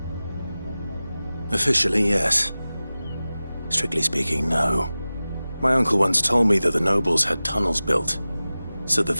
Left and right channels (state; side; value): inverted; both; correlation -0.96